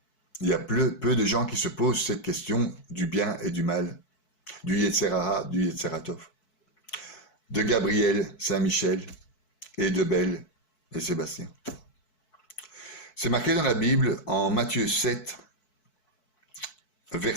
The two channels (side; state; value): right; late; 4.6 ms